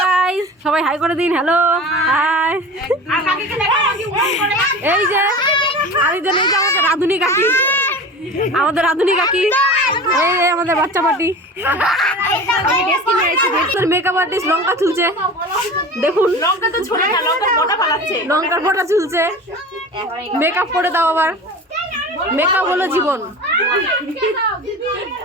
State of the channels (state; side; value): normal; both; correlation 0.35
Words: গাইস, সবাই হাই করে দিন। Hello hi. এই যে আরেকজন, এই যে আমাদের রাধুনি কাকি, এই আমাদের বাচ্চা পার্টি, মেকআপ আর্টিস্ট লঙ্কা চুলছে। দেখুন লঙ্কার ফোঁটা চুলছে। মেকআপ করে দাও আবার। মেকআপ হলো জীবন।